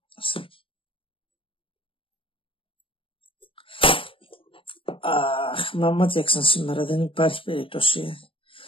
Αχ, μα μάτιαξαν σήμερα, δεν υπάρχει περίπτωση.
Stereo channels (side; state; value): right; late; 0.25 ms